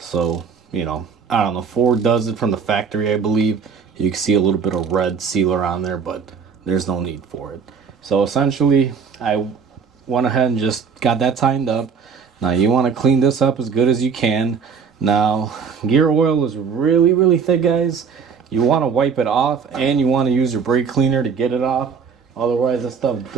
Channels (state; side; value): quieter; left; 6.1 dB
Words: I don't know. Ford does it from the factory, I believe. You can see a little bit of red sealer on there, but there's no need for it. So essentially, I went ahead and just got that tightened up. Now you want to clean this up as good as you can. Now, gear oil is really, really thick, guys. You want to wipe it off, and you want to use your brake cleaner to get it off. Otherwise, this stuff